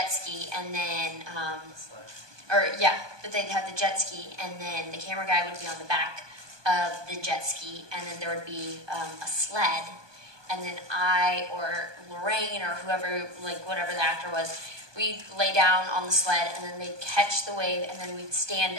ski, and then, but they'd have the jet ski, and then the camera guy would be on the back of the jet ski, and then there would be a sled, and then I or Lorraine or whoever, like whatever the actor was, we'd lay down on the sled, and then they'd catch the wave, and then we'd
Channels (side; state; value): left; late; 1.2 ms